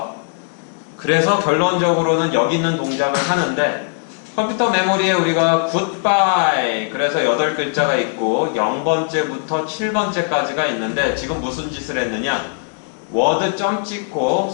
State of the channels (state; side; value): silent; right; digital silence